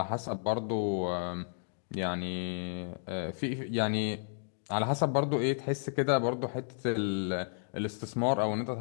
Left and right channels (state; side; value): silent; right; digital silence